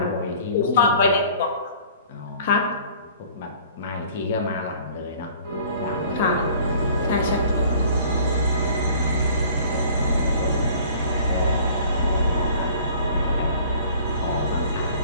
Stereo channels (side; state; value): both; inverted; correlation -0.51